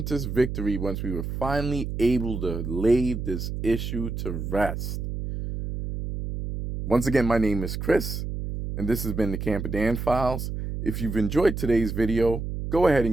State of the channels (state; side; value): noise; right; hum, 5 dB below the sound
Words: victory once we were finally able to lay this issue to rest. Once again, my name is Chris, and this has been the Camper Dan Files. If you've enjoyed today's video, go ahead